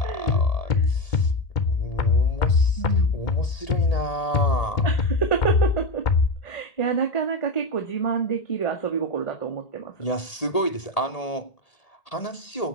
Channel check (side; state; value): right; late; 1.8 ms